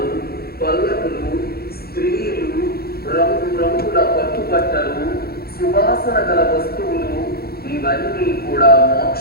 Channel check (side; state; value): right; late; 0.45 ms